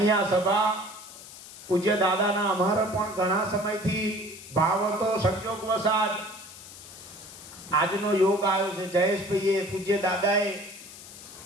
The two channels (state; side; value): noise; left; hiss, 16 dB below the sound